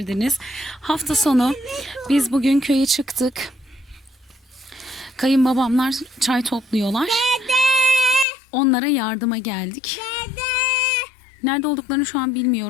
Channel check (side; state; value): right; drops out; at 8.2 s